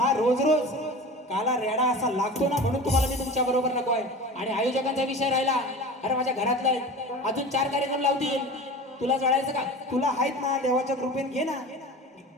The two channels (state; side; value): normal; both; correlation 0.34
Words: रोज रोज काला रेडा असा लागतो ना, म्हणून तुम्हाला मी तुमच्या बरोबर नको आहे. आणि आयोजकांचा विषय राहिला, अरे माझ्या घरातला अजून 4 कार्यक्रम लावतील, तुला जळायचं का? तुला आहेत ना, देवाच्या कृपेने घे ना.